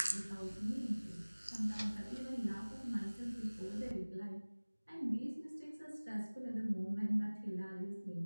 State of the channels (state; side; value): inverted; both; correlation -1.00